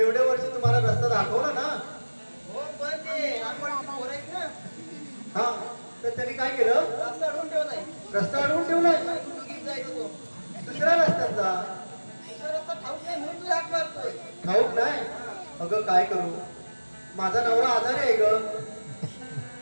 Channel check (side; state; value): both; inverted; correlation -1.00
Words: एवढ्या वर्षी तुम्हाला रस्ता दाखवला ना हो पण ते रामवाडची पोरं आहेत ना हा तर त्यांनी काय केलं रस्ता अडवून ठेवलाय रस्ता अडवून ठेवलाय दोघीच जायचं तो दुसऱ्या रस्त्यांचा दुसरा रस्ता ठाऊक नाही म्हणून तुला हाक मारतोय ठाऊक नाही अगं काय करू माझा नवरा आजारी आहे ग